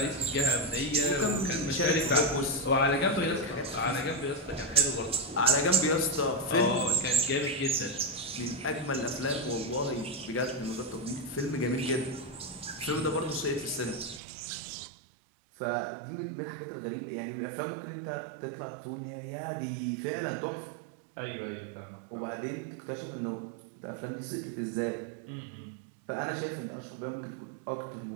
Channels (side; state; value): left; drops out; at 14.2 s